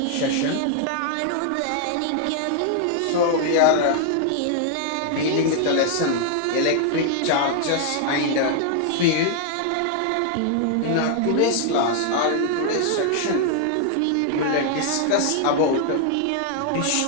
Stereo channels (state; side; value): different; both; correlation 0.00